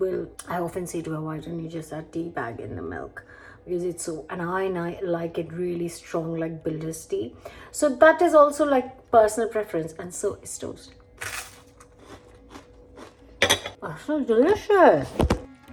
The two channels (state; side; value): identical; both; correlation 1.00